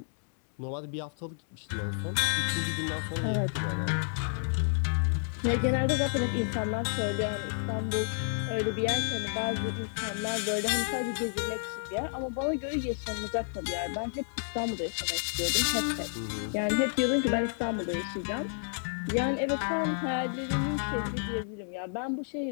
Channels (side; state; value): right; silent; digital silence